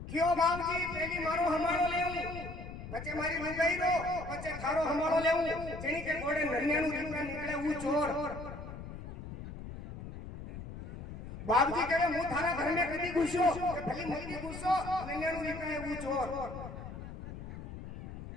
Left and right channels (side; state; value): left; noise; rumble, 11 dB below the sound